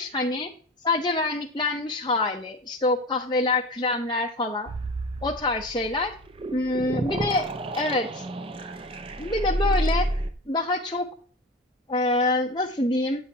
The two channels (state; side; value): normal; both; correlation 0.30